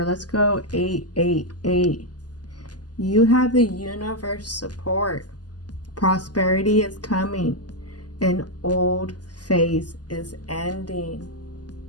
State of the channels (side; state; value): right; late; 0.69 ms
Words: Let's go 888. You have the universe support. Prosperity is coming. An old phase is ending.